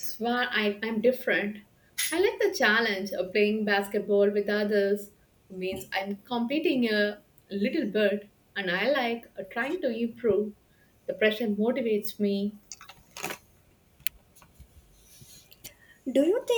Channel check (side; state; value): both; identical; correlation 1.00